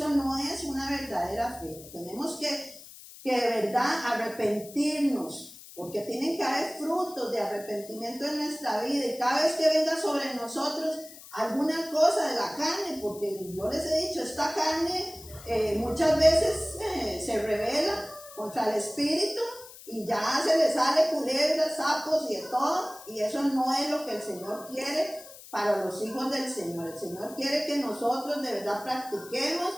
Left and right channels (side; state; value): left; noise; hiss, 17 dB below the sound